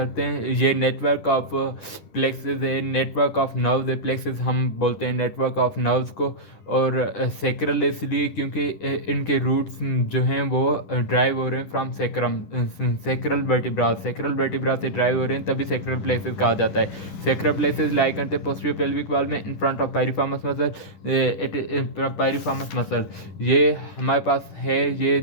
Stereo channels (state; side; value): late; right; 10 ms